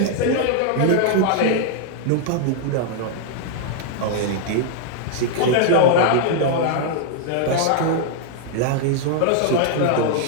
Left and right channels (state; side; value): different; both; correlation 0.00